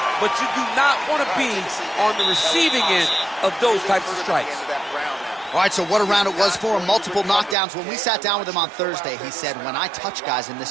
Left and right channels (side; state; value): left; drops out; at 7.6 s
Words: but you do not want to be on the receiving end of those types of strikes. All right, so what a round it was for him. Multiple knockdowns. When we sat down with him on Thursday, he said, when I touch guys in